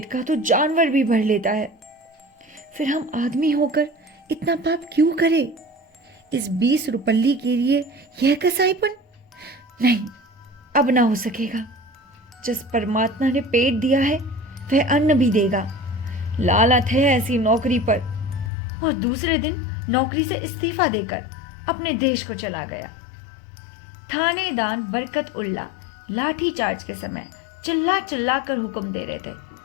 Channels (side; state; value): right; drops out; at 18.5 s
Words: का तो जानवर भी भर लेता है, फिर हम आदमी होकर इतना पाप क्यों करे? इस 20 रुपल्ली के लिए यह कसाईपन? नहीं, अब ना हो सकेगा। जिस परमात्मा ने पेट दिया है वह अन्न भी देगा। लालत है ऐसी नौकरी पर। और दूसरे दिन नौकरी से इस्तीफा देकर अपने देश को चला गया। थानेदार बरकत उल्ला लाठी चार्ज के समय चिल्ला चिल्ला कर हुक्म दे रहे थे,